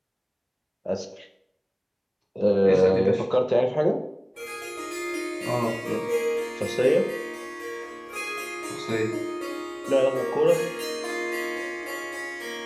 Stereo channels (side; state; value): both; identical; correlation 1.00